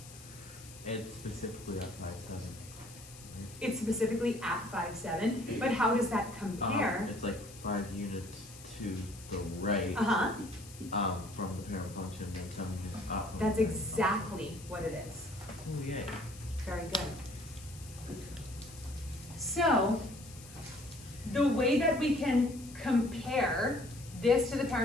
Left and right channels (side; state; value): left; noise; hiss, 18 dB below the sound